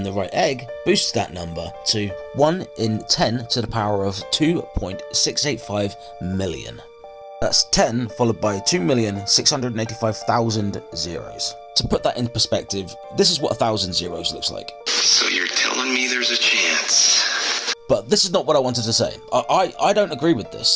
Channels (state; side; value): identical; both; correlation 1.00